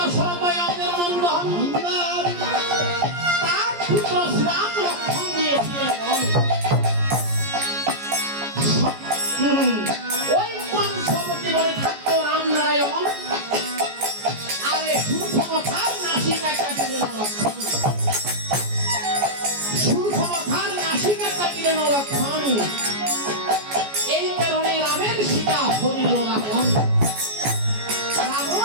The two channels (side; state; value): left; late; 14 ms